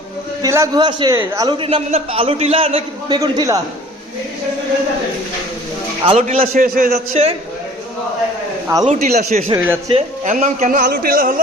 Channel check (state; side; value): normal; both; correlation 0.48